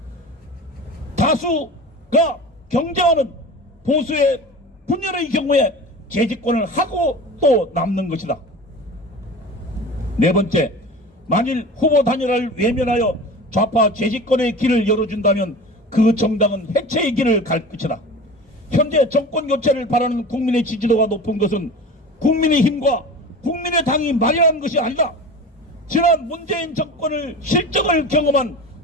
다수가 경쟁하는 보수의 분열의 경우에 재집권을 하고 또 남는 것이다. 네 번째, 만일 후보 단일화를 외면하여 좌파 재집권의 길을 열어준다면 그 정당은 해체의 길을 갈 것이다. 현재 정권 교체를 바라는 국민의 지지도가 높은 것은 국민의힘과 국민의당이 마련한 것이 아니다. 지난 문재인 정권을 실정을 경험한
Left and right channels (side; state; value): both; normal; correlation 0.34